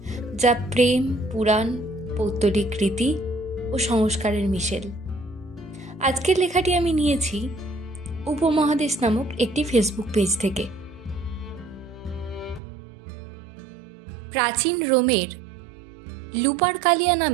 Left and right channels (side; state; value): left; drops out; at 12.6 s